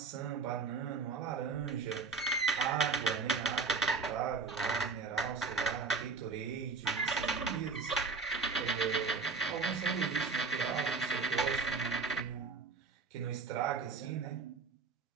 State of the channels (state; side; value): quieter; left; 4.6 dB